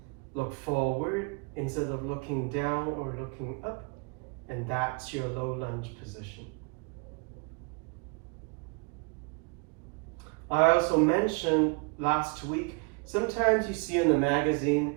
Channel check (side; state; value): left; quieter; 31.8 dB